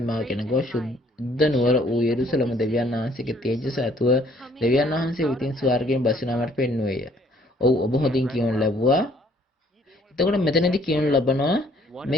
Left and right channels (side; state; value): both; normal; correlation 0.61